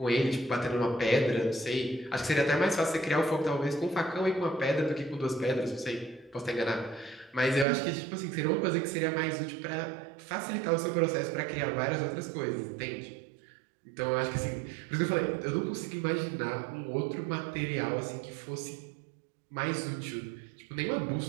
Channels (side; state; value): left; drops out; at 7.7 s